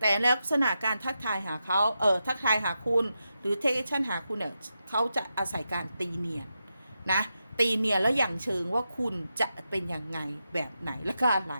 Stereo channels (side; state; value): both; inverted; correlation -0.88